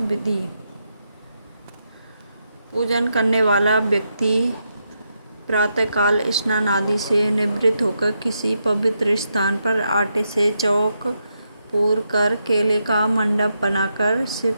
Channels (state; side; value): inverted; both; correlation -0.83